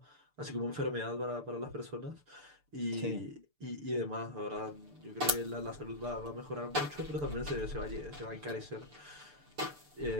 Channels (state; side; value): late; left; 6.8 ms